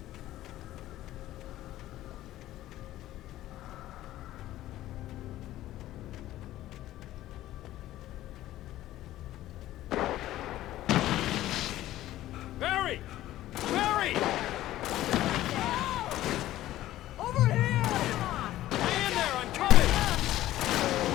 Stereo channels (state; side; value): quieter; right; 14.5 dB